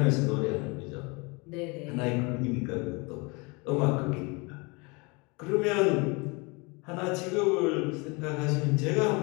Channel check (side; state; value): right; quieter; 28.4 dB